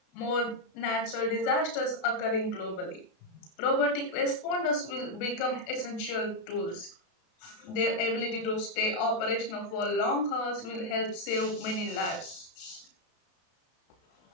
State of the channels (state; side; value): late; right; 33 ms